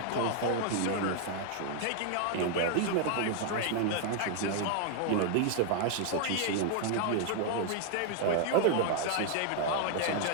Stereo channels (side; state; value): both; different; correlation 0.00